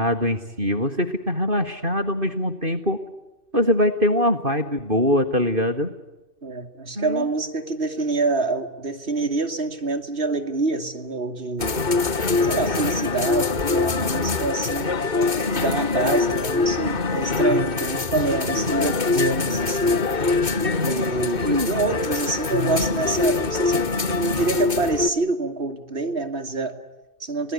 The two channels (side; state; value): left; late; 2.2 ms